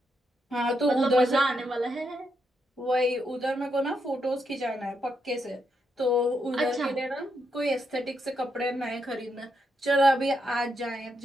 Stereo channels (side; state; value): both; normal; correlation 0.81